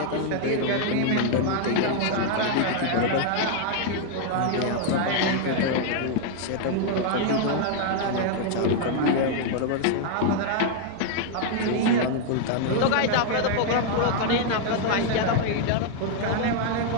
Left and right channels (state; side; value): different; both; correlation 0.00